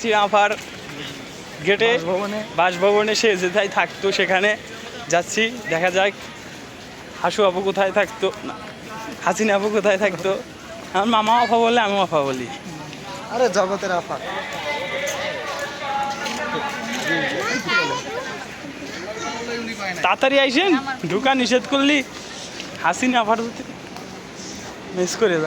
আফার গেটে বাসভবনে, সে যেথায় থাকতো সেখানে যাচ্ছি। দেখা যাক হাসু আপু কোথায় থাকতো, হাসিনা আপু কোথায় থাকতো। আমার মামা আফা বলে, আমি আফা বলি। আরে জগতের আফা। তাড়াতাড়ি আইসেন, ঢুকা নিষেধ করলি। হাসিনা আফার মিস করে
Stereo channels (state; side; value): identical; both; correlation 1.00